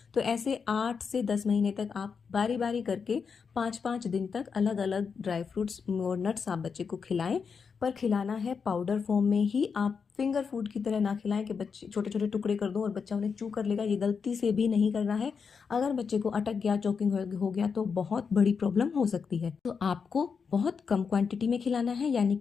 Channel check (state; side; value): quieter; right; 5.8 dB